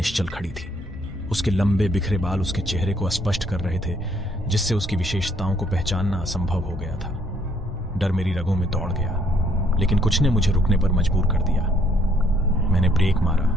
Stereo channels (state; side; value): normal; both; correlation 0.67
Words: खड़ी थी। उसके लंबे बिखरे बाल उसके चेहरे को स्पष्ट कर रहे थे, जिससे उसकी विशेषताओं को पहचानना असंभव हो गया था। डर मेरी रगों में दौड़ गया, लेकिन कुछ ने मुझे रुकने पर मजबूर कर दिया। मैंने ब्रेक मारा,